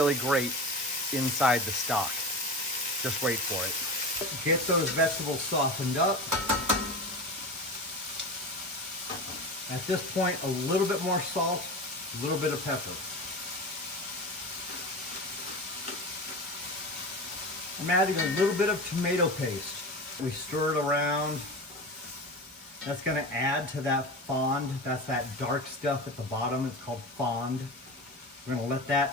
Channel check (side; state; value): both; normal; correlation 0.28